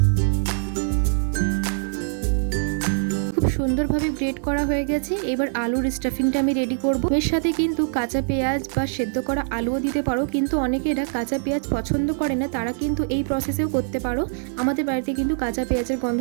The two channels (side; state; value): left; silent; digital silence